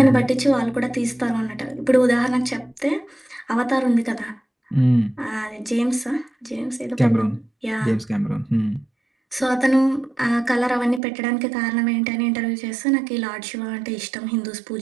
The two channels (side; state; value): left; drops out; at 11.0 s